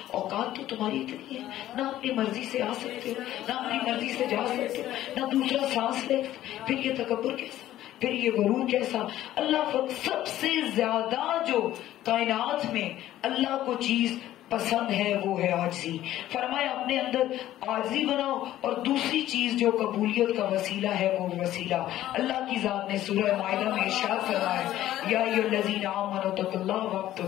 اوقات تو تمہاری اتنی ہے، نہ اپنی مرضی سے آ سکتے ہو، نہ اپنی مرضی سے جا سکتے ہو، نہ دوسرا سانس لے. پھر یہ تکبر کیسا، پھر یہ غرور کیسا. اللہ سب سے زیادہ جو کائنات میں اللہ کو چیز پسند ہے وہ ہے عاجزی. فرمایا اپنے اندر عاجزی بناؤ, اور دوسری چیز جو قبولیت کا وسیلہ ہے وہ وسیلہ اللہ کی ذات نے سورہ مائدہ میں ارشاد فرمایا یا ایھا الذین آمنوا اتقوا اللہ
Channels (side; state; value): right; quieter; 13.6 dB